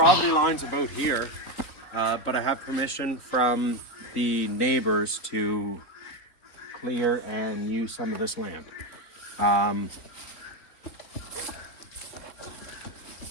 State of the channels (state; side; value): late; right; 3.9 ms